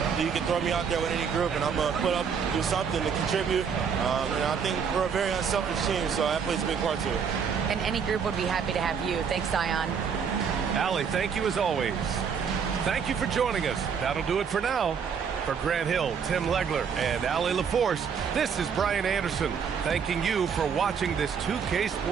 You can throw me out there with any group, and I'm going to put up, do something to contribute. And I think we're a very unselfish team, so that plays a big part to it. And any group would be happy to have you. Thanks, Zion. Allie, thank you as always. Thank you for joining us. That'll do it for now. For Grant Hill, Tim Legler, and Allie LaForce, this is Brian Anderson, thanking you for watching this 2K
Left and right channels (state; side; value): quieter; left; 6.7 dB